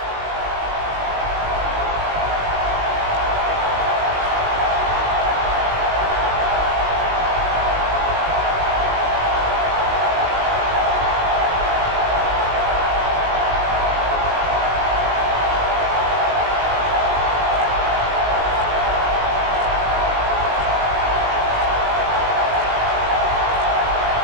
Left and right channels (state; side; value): late; left; 19 ms